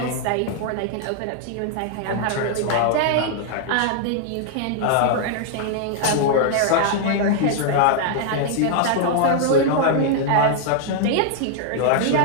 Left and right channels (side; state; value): both; different; correlation 0.00